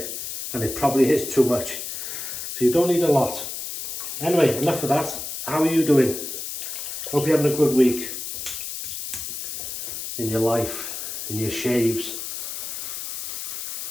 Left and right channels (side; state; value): left; noise; hiss, 6 dB below the sound